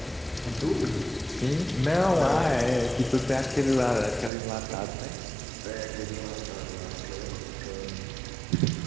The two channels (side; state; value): left; drops out; at 4.3 s